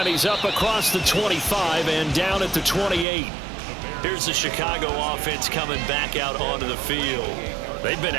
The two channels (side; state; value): left; drops out; at 3.1 s